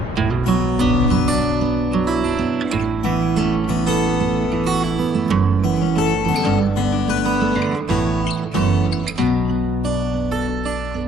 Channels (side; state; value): both; normal; correlation 0.68